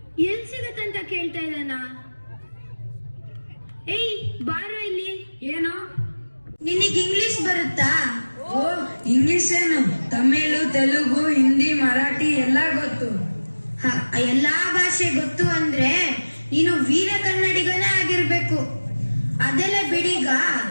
ಎಲ್ಲಿ ಸಿಗತ್ತಂತ ಕೇಳ್ತಾ ಇದ್ದಾನ? ಏಯ್ ಬಾರೋ ಇಲ್ಲಿ. ಏನು? ನಿನಗೆ ಇಂಗ್ಲಿಷ್ ಬರುತ್ತಾ? ಓ, ಇಂಗ್ಲಿಷ್ ಏನು? ತಮಿಳು, ತೆಲುಗು, ಹಿಂದಿ, ಮರಾಠಿ ಎಲ್ಲ ಗೊತ್ತು. ಎಲ್ಲಾ ಭಾಷೆ ಗೊತ್ತು ಅಂದ್ರೆ ನೀನು ವೀರ ಕನ್ನಡಿಗನೇ ಆಗಿರ್ಬೇಕು. ಅದೆಲ್ಲ ಬಿಡೀಗ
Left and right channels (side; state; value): both; inverted; correlation -1.00